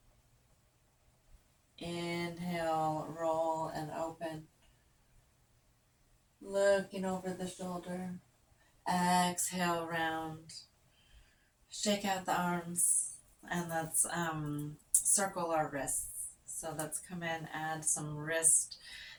Inhale, roll and open. Looking over the shoulder. Exhale, round. Shake out the arms. And let's circle our wrists. So let's come in, add some wrist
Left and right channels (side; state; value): both; identical; correlation 1.00